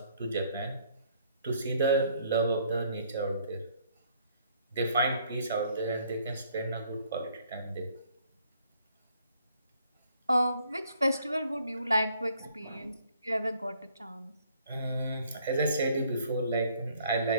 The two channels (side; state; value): both; inverted; correlation -0.64